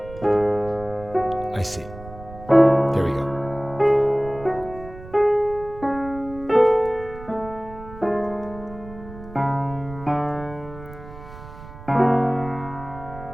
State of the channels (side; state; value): right; noise; rumble, 15 dB below the sound